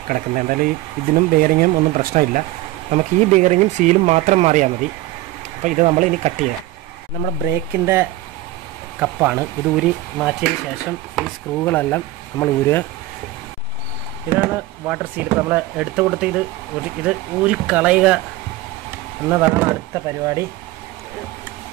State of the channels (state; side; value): quieter; left; 15.8 dB